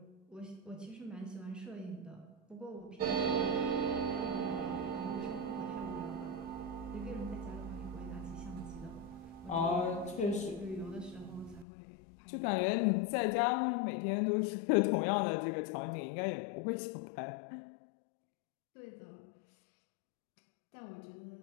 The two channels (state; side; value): drops out; right; at 11.7 s